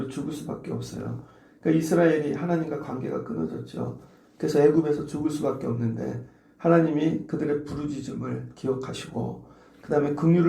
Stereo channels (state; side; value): identical; both; correlation 1.00